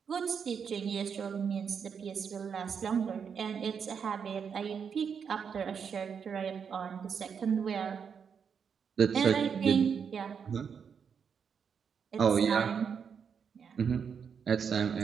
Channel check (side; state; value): left; quieter; 6.8 dB